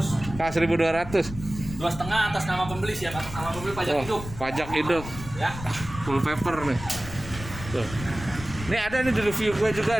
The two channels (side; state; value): left; noise; rumble, 12 dB below the sound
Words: Kah 1200. 2,5 atas nama pembeli, siap atas nama pembeli pajak Oh, hidup. pajak hidup. Ya. Full paper nih. Tuh. Ini ada nih di review gue